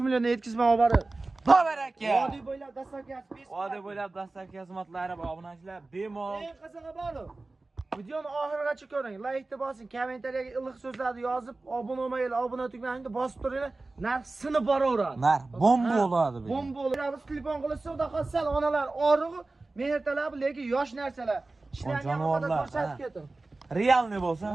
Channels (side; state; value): left; quieter; 3.3 dB